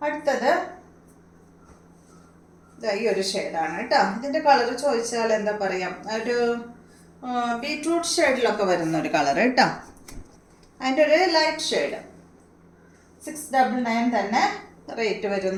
അടുത്തത് ഈ ഒരു ഷെയ്ഡാണ് കേട്ടോ. ഇതിൻ്റെ കളർ ചോദിച്ചാൽ എന്താ പറയാം, ഒരു ബീട്രൂട്ട് ഷെയ്ഡിലൊക്കെ വരുന്ന ഒരു കളർ കേട്ടോ. അതിൻ്റെ ഒരു ലൈറ്റ് ഷെയ്ഡ്. 699 തന്നെ റേറ്റ്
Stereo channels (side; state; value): both; identical; correlation 1.00